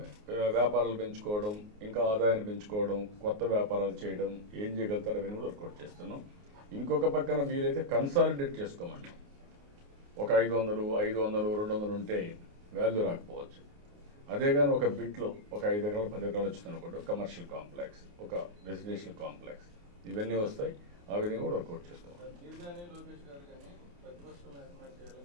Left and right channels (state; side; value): late; left; 29 ms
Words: వ్యాపారాలు పెంచుకోవడం, ఇంకా ఆదాయాన్ని పెంచుకోవడం, కొత్త వ్యాపారాలు చేయడం, ఏం చేయగలుగుతారో అవన్నీ కూడా వర్కౌట్ చేస్తున్నాం. ఇంకొక పక్కన వీలైతే కన్సాలిడేట్ చేసుకోమన్నాం. ఒక 500 200 ఉంటే వాల్యూ రాకపోవచ్చు. అదే కానీ ఒక బిట్లో ఒక 5 ఎకరాలు 10 ఎకరాలు వచ్చిందనుకోండి, ఒక కమర్షియల్ కాంప్లెక్స్, ఒక రెసిడెన్షియల్ కాంప్లెక్స్, ఇవన్నీ వస్తాయి. ఆ విధంగా కూడా వర్కౌట్ చేస్తాం.